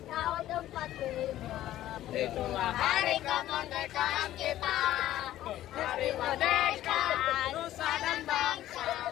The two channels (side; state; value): right; quieter; 13.6 dB